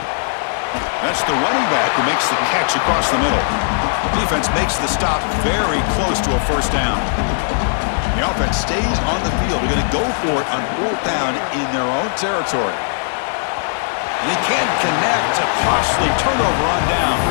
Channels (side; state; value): right; silent; digital silence